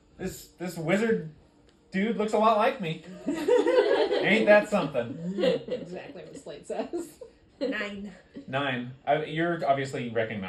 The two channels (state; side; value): identical; both; correlation 1.00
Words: This wizard dude looks a lot like me. Ain't that something? Exactly what Slate says. 9. 9. You're obviously